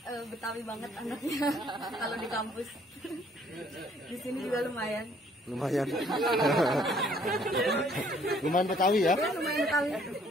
Betawi banget anaknya kalau di kampus. Di sini juga lumayan. Lumayan. Lumayan Betawi ya? Ya lumayan Betawi.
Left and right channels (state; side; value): normal; both; correlation 0.62